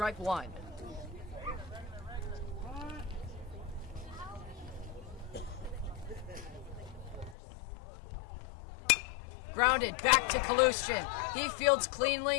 1. Grounded back to Salesian. He fields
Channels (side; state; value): right; drops out; at 7.4 s